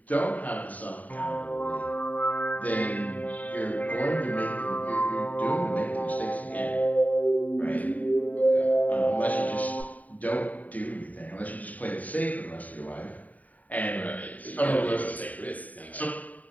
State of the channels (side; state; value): right; late; 0.073 ms